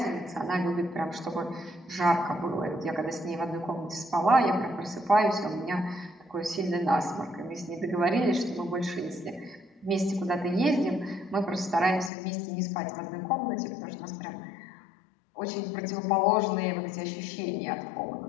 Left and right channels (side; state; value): right; drops out; at 12.1 s